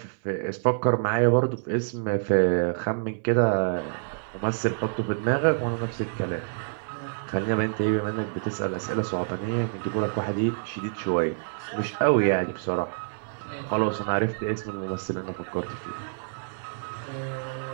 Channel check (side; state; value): left; silent; 60 dB below the other